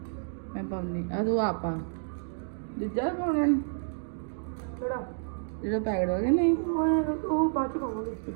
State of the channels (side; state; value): left; silent; digital silence